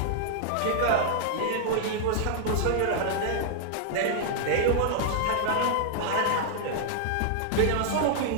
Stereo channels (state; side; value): different; both; correlation -0.01